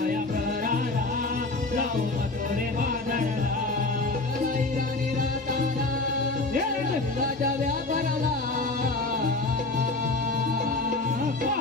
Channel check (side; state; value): right; quieter; 3.2 dB